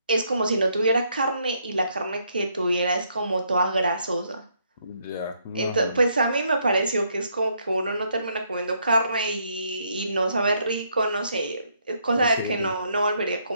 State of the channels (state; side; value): inverted; both; correlation -0.72